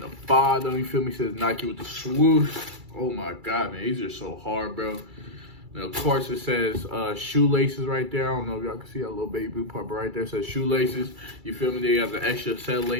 bottom, you feel me, says Nike with the swoosh. Oh my God, man, these are so hard, bro. And of course, it says shoelaces right there. I don't know if y'all can see that little baby blue part, but right there it says shoelaces. You feel me? They have the extra set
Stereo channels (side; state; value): left; late; 2.3 ms